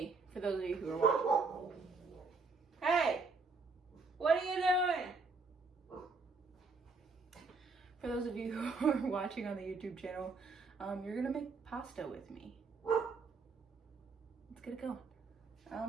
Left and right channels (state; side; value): quieter; left; 4.1 dB